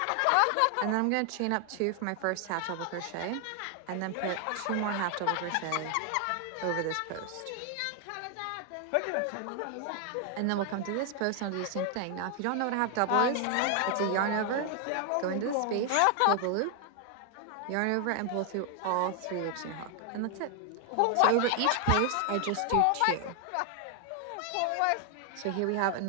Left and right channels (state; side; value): different; both; correlation 0.00